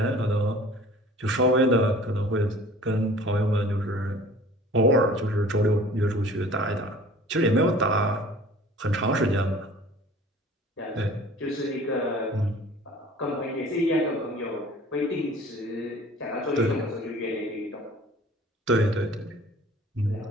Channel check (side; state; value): both; normal; correlation 0.47